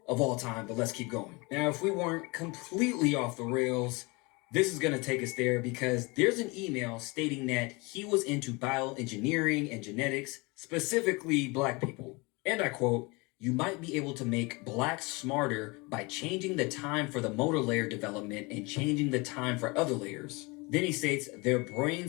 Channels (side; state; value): right; quieter; 26.5 dB